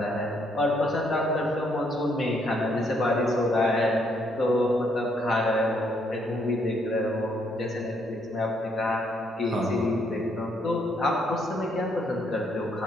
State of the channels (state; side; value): normal; both; correlation 0.71